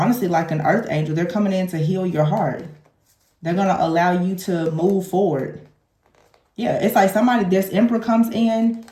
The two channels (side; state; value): both; identical; correlation 1.00